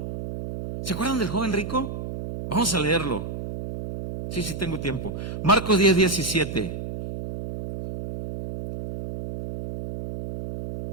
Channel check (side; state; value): right; noise; hum, 7 dB below the sound